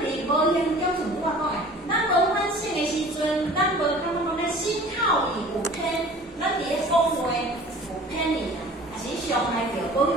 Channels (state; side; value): normal; both; correlation 0.45